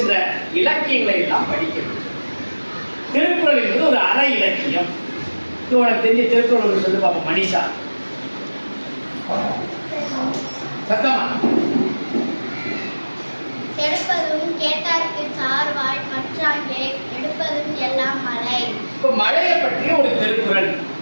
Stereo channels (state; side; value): inverted; both; correlation -1.00